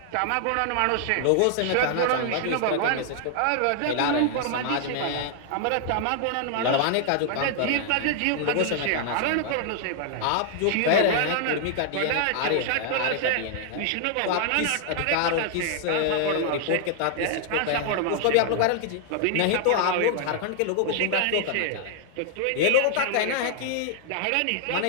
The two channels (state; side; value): different; both; correlation 0.00